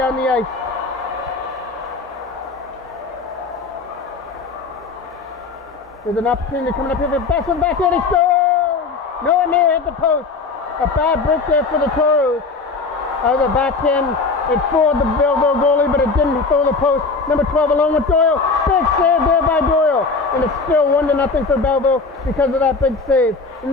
the ice. There's an opportunity coming up here for best one back in. He scores! No one there hit the post. A bad break there for the Toros. The backhand, it fooled the Belleville goalie, but it didn't fool the post. Number 12 along with Doyle. Big save there by Doyle. And it's still 1-0 for Belleville because of that big save.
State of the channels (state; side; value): quieter; right; 4.2 dB